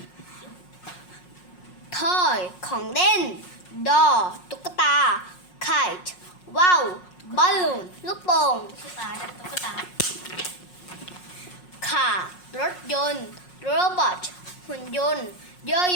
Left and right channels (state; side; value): late; right; 5.5 ms